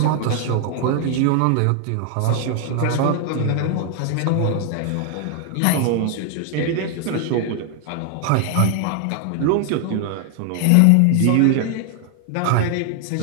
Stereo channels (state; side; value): different; both; correlation 0.00